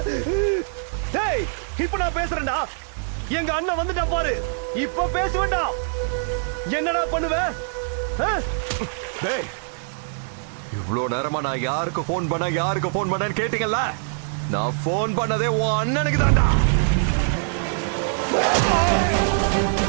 டேய் இப்ப நான் பேசுறேன்டா. எங்க அண்ணன் வந்துட்டா பாரு. இப்ப பேசுவேன்டா. என்னடா பண்ணுவ? டேய், இவ்ளோ நேரமா நான் யாருக்கு போன் பண்ணேன்னு கேட்டீங்கல்ல? நான் போன் பண்ணதே உன் அண்ணனுக்கு தான்டா.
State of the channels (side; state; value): left; silent; digital silence